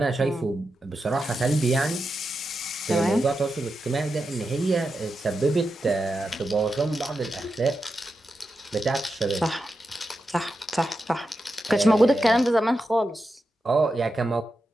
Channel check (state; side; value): normal; both; correlation 0.88